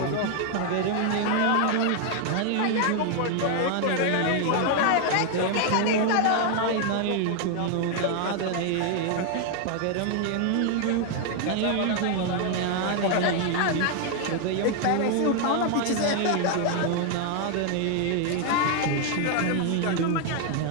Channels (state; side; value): different; both; correlation 0.00